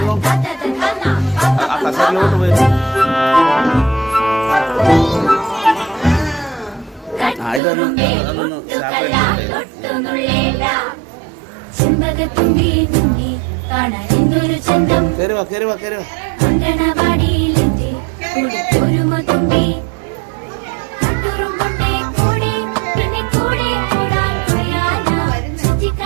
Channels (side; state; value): left; drops out; at 7.6 s